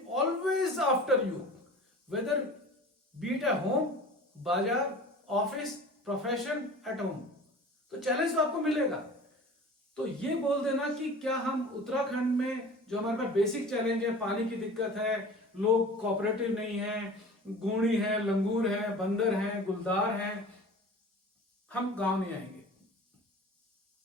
always after you, whether be it at home, बाजार, ऑफिस, प्रोफेशन, एट होम, तो चैलेंज तो आपको मिलेगा। तो ये बोल देना कि क्या हम उत्तराखंड में जो हमारे पास बेसिक चैलेंज है, पानी की दिक्कत है, लोग कोऑपरेटिव नहीं है, गूणी है, लंगूर है, बंदर है, गुलदार है, हम गांव नहीं आएंगे।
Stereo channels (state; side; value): normal; both; correlation 0.40